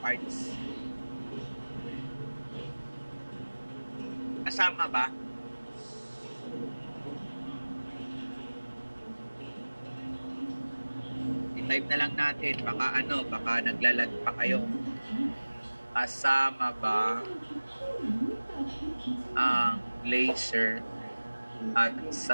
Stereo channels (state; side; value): inverted; both; correlation -1.00